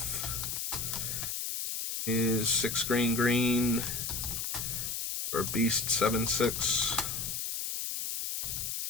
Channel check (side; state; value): left; noise; hiss, 3 dB below the sound